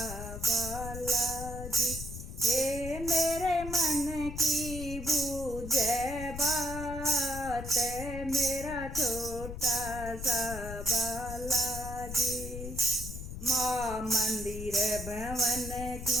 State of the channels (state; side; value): noise; left; rumble, 8 dB below the sound